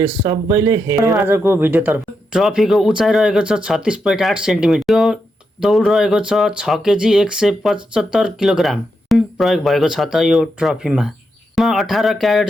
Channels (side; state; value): both; normal; correlation 0.84